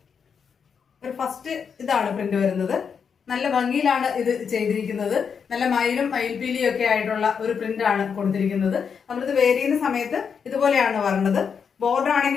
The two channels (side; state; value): right; quieter; 6.5 dB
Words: ഇതാണ് പ്രിന്റ് വരുന്നത്. നല്ല ഭംഗിയിലാണ് ഇത് ചെയ്തിരിക്കുന്നത്. നല്ല മയിലും മയിൽപീലിയും ഒക്കെ ആയിട്ടുള്ള ഒരു പ്രിന്റ് ആണ് കൊടുത്തിരിക്കുന്നത്. നമ്മളിത് വെയർ ചെയ്യുന്ന സമയത്ത് ഇതുപോലെയാണ് വരുന്നത്. ബോർഡർ